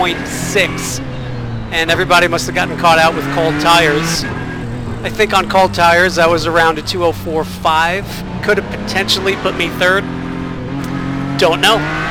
and everybody must have gotten caught out with cold tires. I think on cold tires I was around a 2:04.5. Could have potentially put me third. Don't know.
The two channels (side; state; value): both; identical; correlation 1.00